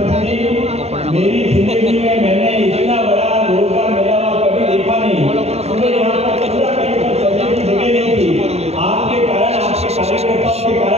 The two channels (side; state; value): left; late; 0.30 ms